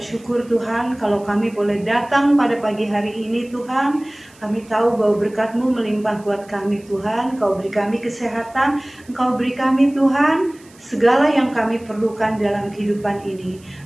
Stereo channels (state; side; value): noise; right; hiss, 27 dB below the sound